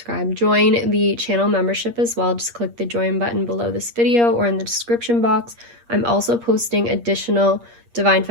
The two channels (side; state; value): left; late; 8.5 ms